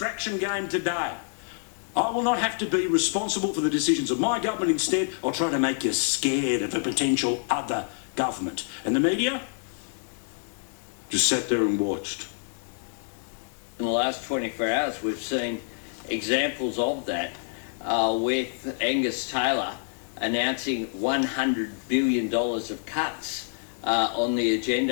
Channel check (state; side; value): silent; right; 60 dB below the other